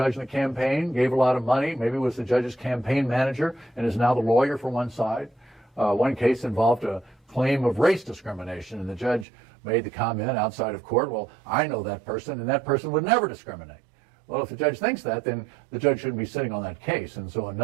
in the campaign, gave a lot of money, maybe was the judge's campaign manager, and is now the lawyer for one side. One case involved a claim of race discrimination, and the judge made the comment outside of court, well, I know that person, and that person would never discriminate. Well, if the judge thinks that, then the judge shouldn't be sitting on that case, and so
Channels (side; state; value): left; drops out; at 9.2 s